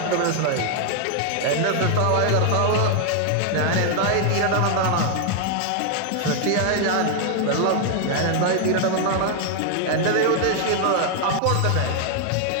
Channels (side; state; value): both; different; correlation 0.00